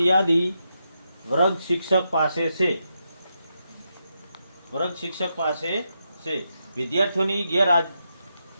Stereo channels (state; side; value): inverted; both; correlation -0.84